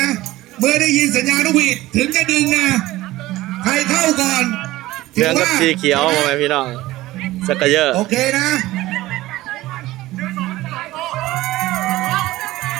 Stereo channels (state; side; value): quieter; left; 17.2 dB